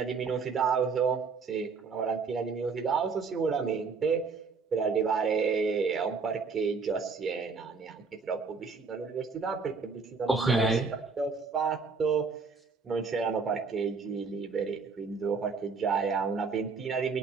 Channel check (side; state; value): left; quieter; 4.9 dB